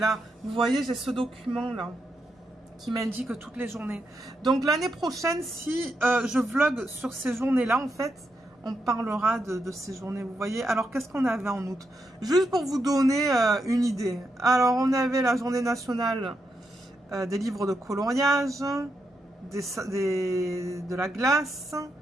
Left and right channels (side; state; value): both; normal; correlation 0.83